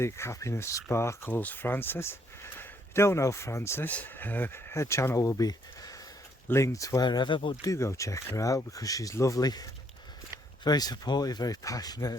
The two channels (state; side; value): normal; both; correlation 0.69